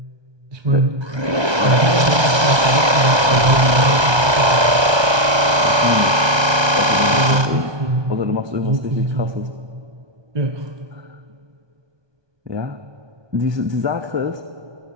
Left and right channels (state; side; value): late; left; 1.3 ms